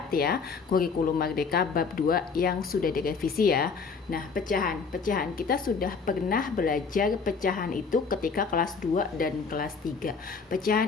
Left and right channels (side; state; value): right; quieter; 5.2 dB